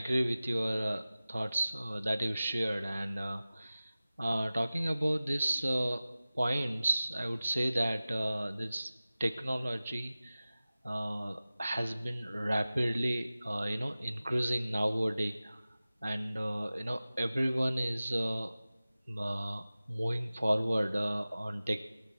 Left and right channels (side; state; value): both; inverted; correlation -0.97